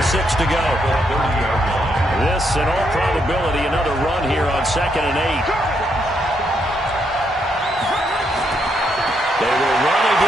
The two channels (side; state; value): both; normal; correlation 0.77